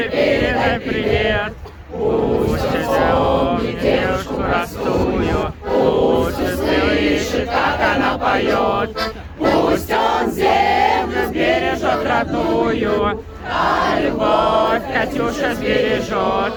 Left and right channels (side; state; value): both; identical; correlation 1.00